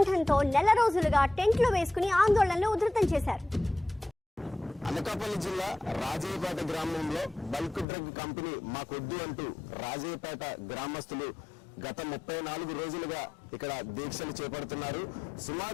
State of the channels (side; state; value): right; drops out; at 7.9 s